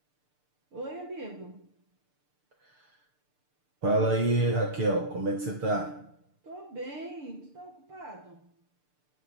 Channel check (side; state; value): left; late; 6.7 ms